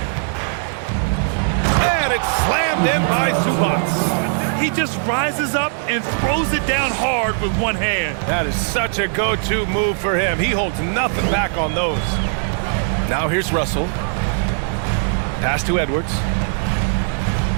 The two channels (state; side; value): silent; left; 63 dB below the other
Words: And it's slammed in by Zubats. He just rises up and throws it down hard with one hand. That is such a go-to move for him. He holds nothing back on those. Now here's Russell. Pass to Edwards.